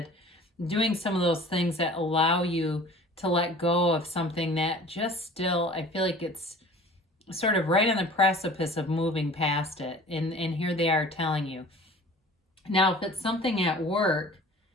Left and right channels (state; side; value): normal; both; correlation 0.45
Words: Doing some of those things that allow you to let go of something that just still, I feel like it's sort of right on the precipice of moving past it. And here they are telling you. Now, if it's something at work